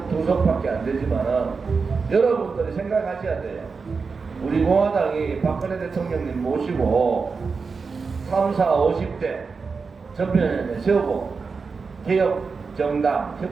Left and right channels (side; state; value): left; quieter; 4.9 dB